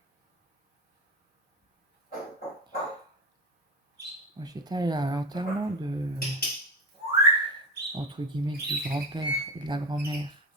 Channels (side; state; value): both; normal; correlation 0.21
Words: Moi j'étais allée à l'enterrement de... entre guillemets du grand-père et de la grand-mère